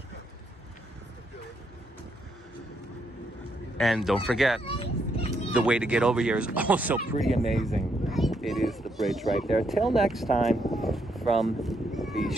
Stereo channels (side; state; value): both; normal; correlation 0.76